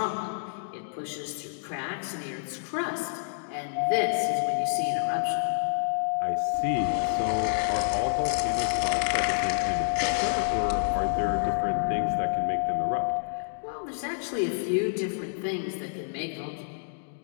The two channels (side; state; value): right; silent; digital silence